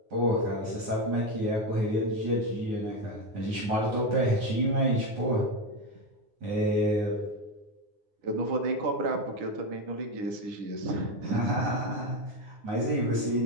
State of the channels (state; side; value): late; left; 9.6 ms